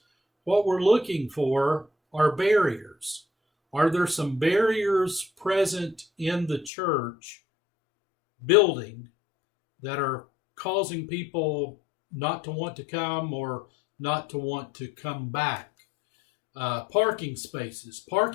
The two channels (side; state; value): right; drops out; at 6.7 s